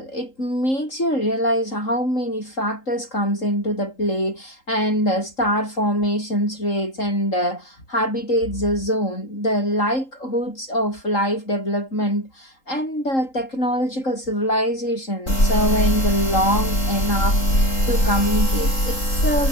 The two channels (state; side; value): late; right; 3.8 ms